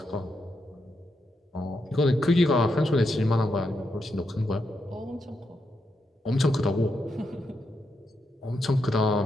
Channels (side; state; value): both; normal; correlation 0.83